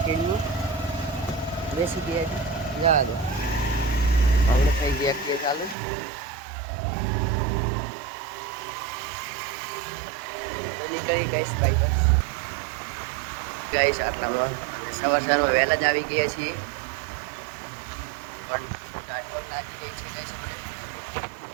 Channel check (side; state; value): left; drops out; at 5.8 s